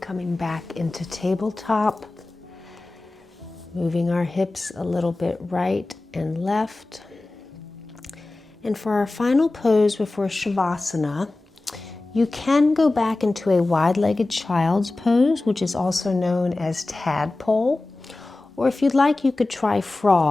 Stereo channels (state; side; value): quieter; right; 3.0 dB